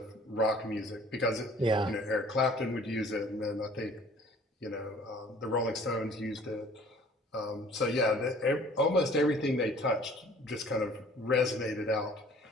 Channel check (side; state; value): both; normal; correlation 0.53